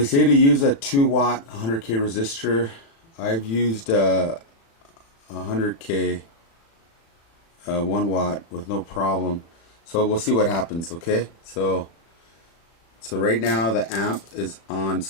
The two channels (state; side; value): late; right; 36 ms